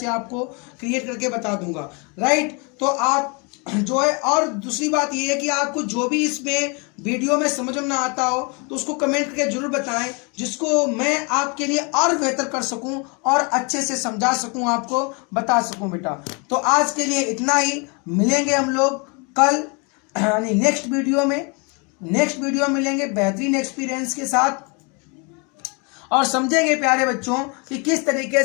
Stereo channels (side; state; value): right; quieter; 32.5 dB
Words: आपको क्रिएट करके बता दूंगा। राइट। तो आप जो है, और दूसरी बात ये है कि आपको जो भी इसमें वीडियो में समझ में ना आता हो तो उसको कमेंट करके जरूर बताएं, जिसको मैं आपके लिए और बेहतर कर सकूं और अच्छे से समझा सकूं, आपको बता सकूं बेटा। तो आज के लिए इतना ही। मिलेंगे हम लोग कल, यानी नेक्स्ट वीडियो में मिलेंगे बेहतरीन एक्सपीरियंस के साथ, और समझेंगे प्यारे बच्चों कि किस तरीके